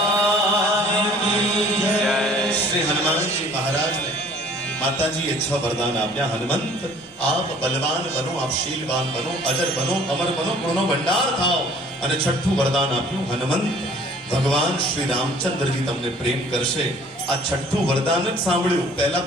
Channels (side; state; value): both; normal; correlation 0.53